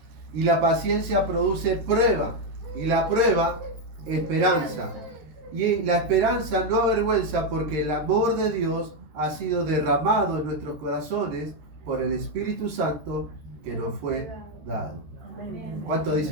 y la paciencia produce prueba, y la prueba esperanza. Y la esperanza no avergüenza, porque el amor de Dios ha sido derramado en nuestros corazones por el Espíritu Santo que nos fue dado. ¿Cuántos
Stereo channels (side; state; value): left; late; 13 ms